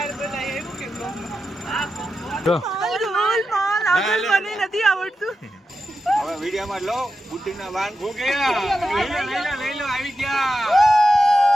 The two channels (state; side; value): normal; both; correlation 0.89